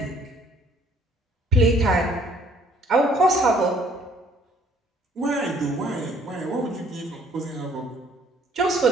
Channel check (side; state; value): both; normal; correlation 0.60